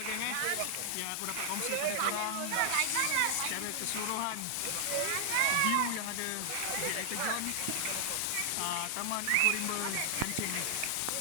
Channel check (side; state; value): both; different; correlation -0.01